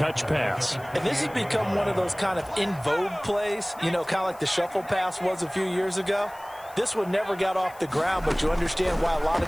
pass. And this has become one of those kind of in vogue plays, you know, kind of like the shuffle pass was a few years ago. This one never got off the ground, but you understand why a lot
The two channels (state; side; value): noise; left; hiss, 23 dB below the sound